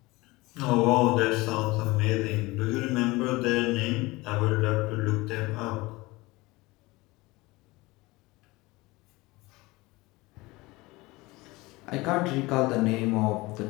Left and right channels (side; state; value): right; quieter; 21.8 dB